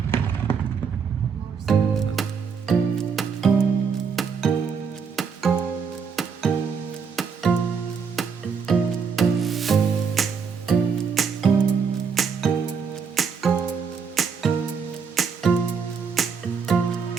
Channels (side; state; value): left; quieter; 6.0 dB